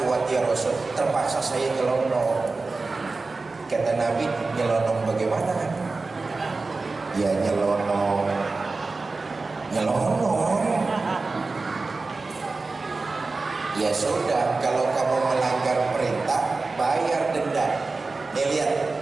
kuat ya Rasul, terpaksa saya nyelonong. Kata Nabi, nyelonong bagaimana? Ya nyelonong. Ya sudah, kalau kamu melanggar perintah, bayar denda. Nih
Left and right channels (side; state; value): left; quieter; 3.7 dB